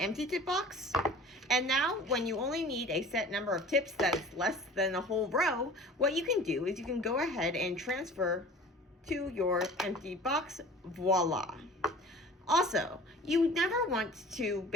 tip box. And now, when you only need a set number of tips that's less than a whole row, what you can do is you can go ahead and transfer to your empty box. Voila. Also, you never want to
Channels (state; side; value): normal; both; correlation 0.43